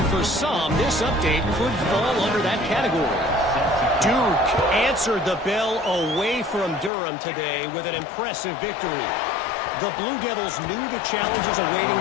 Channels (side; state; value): right; drops out; at 6.9 s